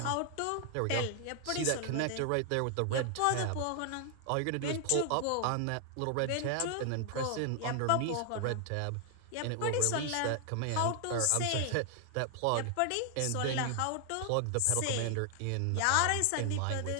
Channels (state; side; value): different; both; correlation 0.00